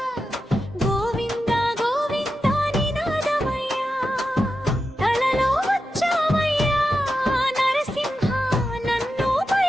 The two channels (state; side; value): normal; both; correlation 0.90